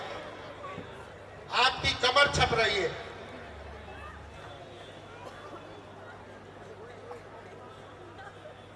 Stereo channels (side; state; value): both; identical; correlation 1.00